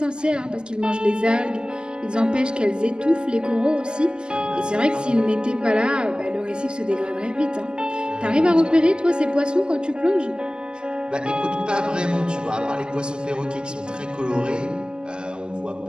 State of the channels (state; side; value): late; left; 0.047 ms